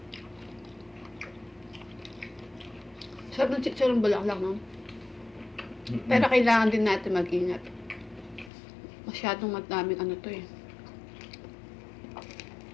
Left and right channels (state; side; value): drops out; right; at 8.5 s